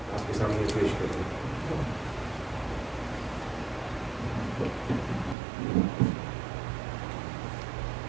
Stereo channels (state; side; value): drops out; left; at 5.4 s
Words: آپ کے سامنے پیش کریں۔